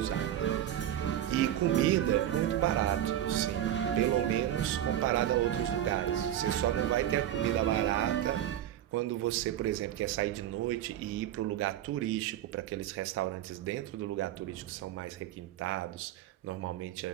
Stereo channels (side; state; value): left; quieter; 11.8 dB